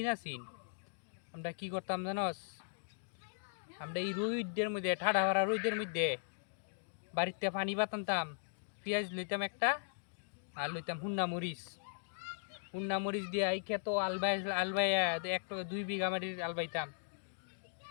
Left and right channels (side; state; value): right; silent; digital silence